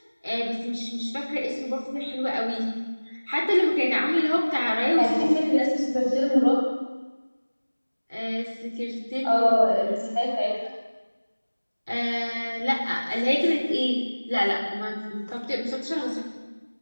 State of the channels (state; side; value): inverted; both; correlation -1.00